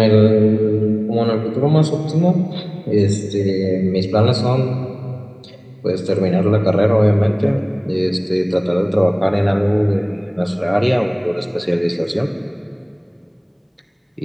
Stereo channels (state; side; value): identical; both; correlation 1.00